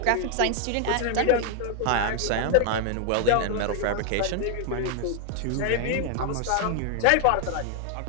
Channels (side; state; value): both; different; correlation 0.00